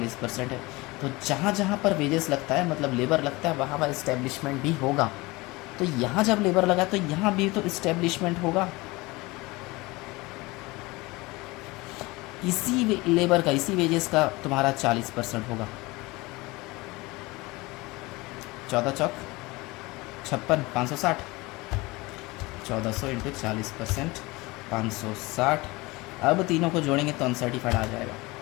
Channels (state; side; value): quieter; right; 22.6 dB